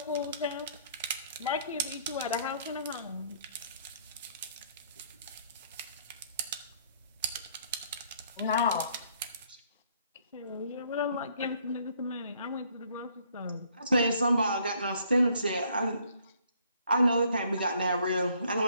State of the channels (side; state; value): both; inverted; correlation -0.64